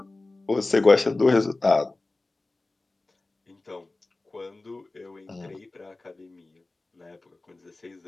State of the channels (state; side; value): quieter; right; 3.1 dB